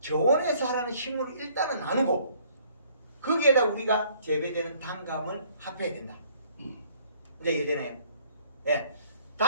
저온에 자라는 식물을 일단은 나누고 거기에다 우리가 재배되는 단감을 합해야 된다. 이제 이해되나요? 네.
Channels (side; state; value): both; inverted; correlation -0.60